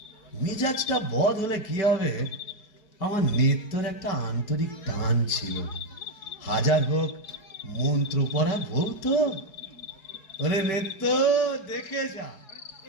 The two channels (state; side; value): late; right; 4.7 ms